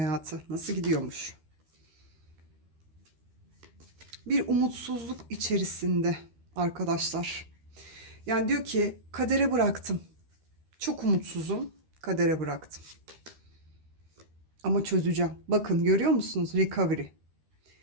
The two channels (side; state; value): left; late; 13 ms